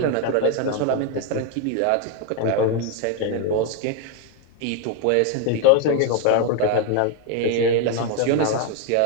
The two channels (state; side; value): different; both; correlation 0.01